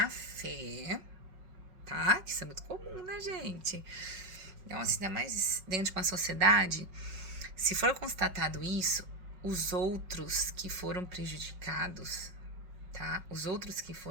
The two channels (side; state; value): left; late; 5.4 ms